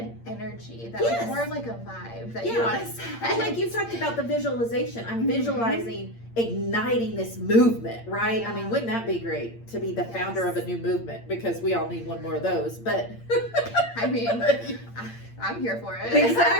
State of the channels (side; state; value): right; late; 8.7 ms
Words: energy, that Yes. like, more of like a vibe that you want to set. Like you talked about the visualization. I'm visualizing igniting this movement, right? Yeah. I mean, wouldn't that be great to be the founder of a new movement? Because we all need one more of those. But I mean, I'm here for it.